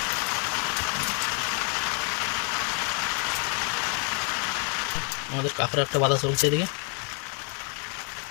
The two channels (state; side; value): quieter; right; 38.8 dB